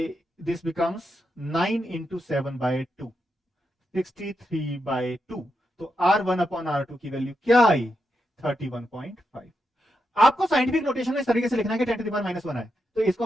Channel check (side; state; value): both; normal; correlation 0.85